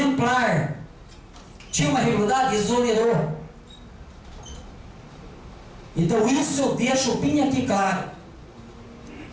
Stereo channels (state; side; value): identical; both; correlation 1.00